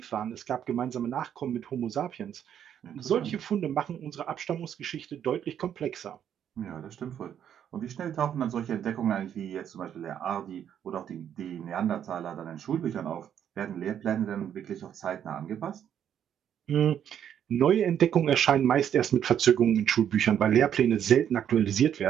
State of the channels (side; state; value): left; quieter; 9.4 dB